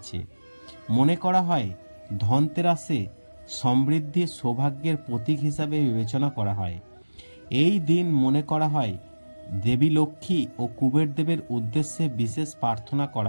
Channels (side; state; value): both; inverted; correlation -1.00